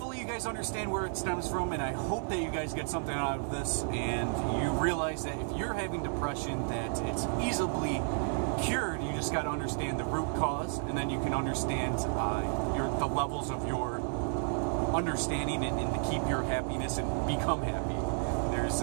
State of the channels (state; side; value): silent; left; 56 dB below the other